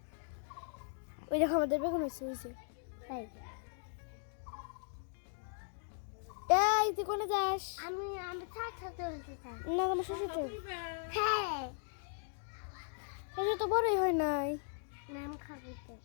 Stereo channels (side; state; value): right; silent; digital silence